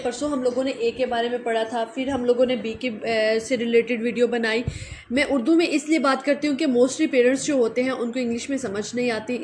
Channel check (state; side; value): identical; both; correlation 1.00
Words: हम लोगों ने ए के बारे में पढ़ा था, फिर हम लोगों ने बी के से रिलेटेड वीडियो बनाई। मैं उर्दू में इसलिए बात करती हूँ कि मोस्टली पेरेंट्स जो होते हैं उनको इंग्लिश में समझ नहीं आती,